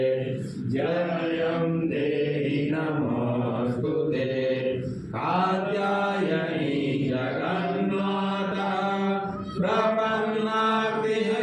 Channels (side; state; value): both; identical; correlation 1.00